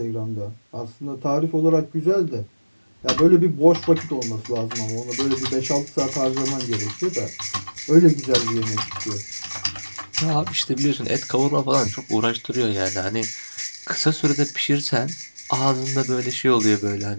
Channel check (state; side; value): inverted; both; correlation -1.00